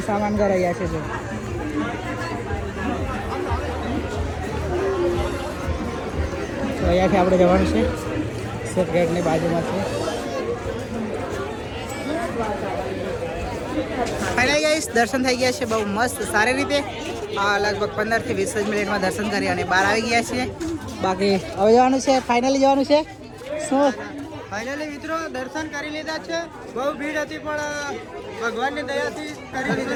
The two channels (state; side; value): identical; both; correlation 1.00